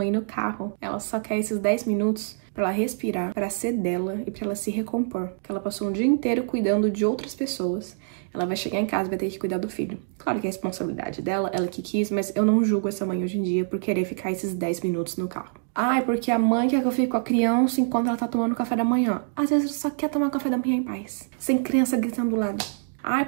no carro, ela só quer esses 10 minutos pra ela respirar, pra ser dela e pra ela se recompor. Porque ela passou um dia inteiro cuidando de outras pessoas. Ela vai chegar em casa e vai ter que cuidar do filho. Claro que é a responsabilidade dela, ela que quis, mas eu não julgo essa mãe hoje em dia por querer ficar esses 10 minutos no carro. Ai, porque a mãe quer que eu fique com a criança enquanto ela tá tomando café da manhã. Às vezes ela só quer tomar café da manhã em paz, sem criança gritando do lado. Ai,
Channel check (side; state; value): left; silent; digital silence